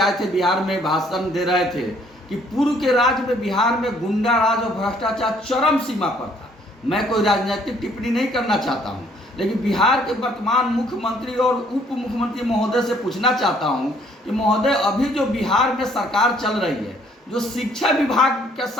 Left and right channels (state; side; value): normal; both; correlation 0.63